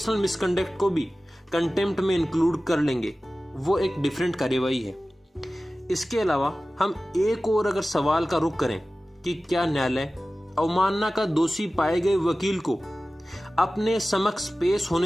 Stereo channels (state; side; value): normal; both; correlation 0.96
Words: मिसकंडक्ट को भी कंटेम्प्ट में इंक्लूड कर लेंगे। वो एक डिफरेंट कार्यवाही है। इसके अलावा हम एक और अगर सवाल का रुख करें कि क्या न्यायालय अवमानना का दोषी पाए गए वकील को अपने समक्ष पेश